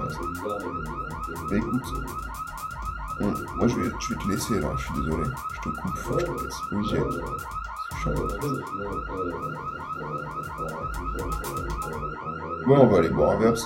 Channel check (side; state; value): both; identical; correlation 1.00